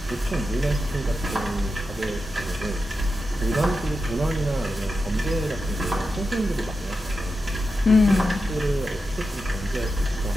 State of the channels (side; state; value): both; normal; correlation 0.89